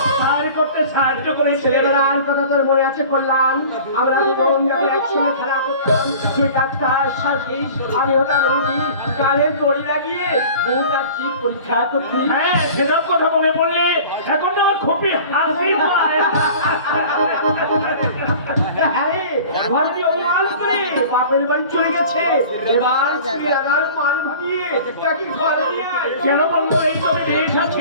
সাহায্য করতে সাহায্য করেছে। ছেলেবেলার কথা তোর মনে আছে কল্যাণ? আমরা দুজন যখন একসঙ্গে খেলা করতাম, তুই ডাক্তার সার্ভিস, আমি হতাম রুগী। কানে দড়ি লাগিয়ে দুটার চিপ পরীক্ষা করতি। হ্যাঁ, সেসব কথা মনে পড়লে এখন তো আমার খুবই হাসি পায়। আরে ঘরটি অপমান করে বাপের বাড়ি চলে গেছে। এবার তুই আদার মান ভাবিয়ে তাকে ঘরে নিয়ে আয়। কেন বলবো? এই তো আমি দেশ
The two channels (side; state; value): both; inverted; correlation -0.43